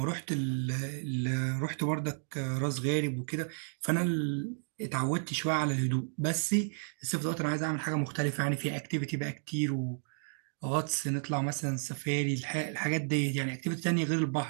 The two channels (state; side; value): silent; left; digital silence